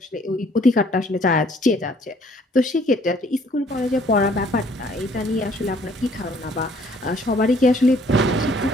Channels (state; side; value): normal; both; correlation 0.61